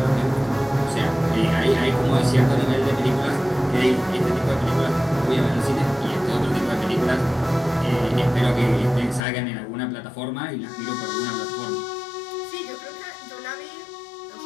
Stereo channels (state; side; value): drops out; right; at 9.2 s